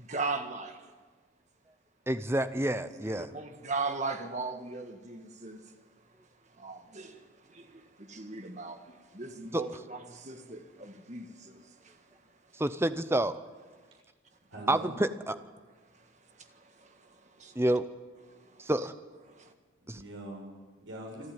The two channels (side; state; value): both; normal; correlation 0.59